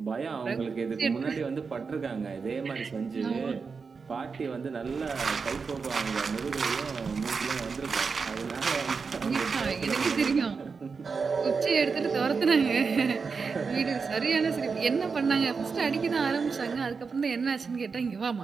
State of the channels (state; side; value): quieter; left; 5.1 dB